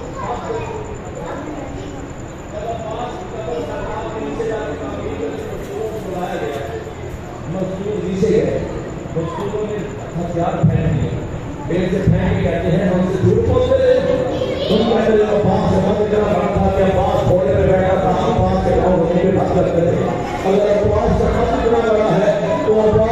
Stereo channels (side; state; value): both; identical; correlation 1.00